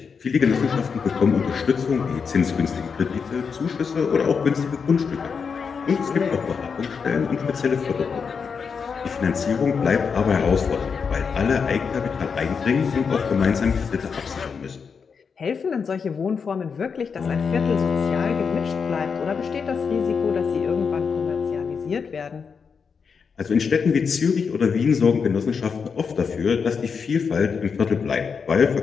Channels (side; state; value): right; quieter; 5.9 dB